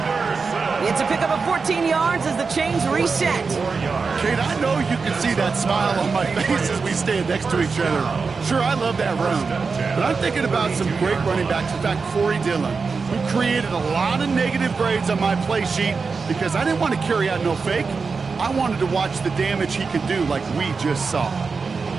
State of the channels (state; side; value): quieter; left; 4.8 dB